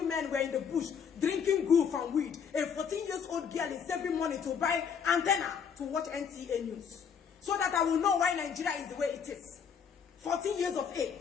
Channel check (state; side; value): quieter; right; 7.0 dB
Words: men were in the bush drinking goof and weed. A 14-year-old girl is saving money to buy antenna to watch NTA news so that I will know why Nigeria is the way it is. 14 years of